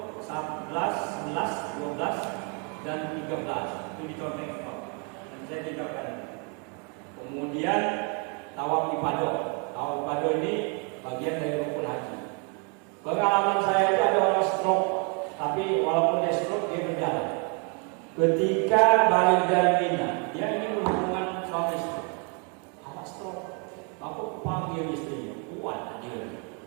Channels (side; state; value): left; quieter; 36.7 dB